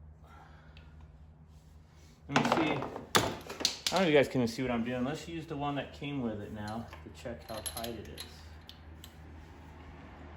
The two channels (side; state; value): both; identical; correlation 1.00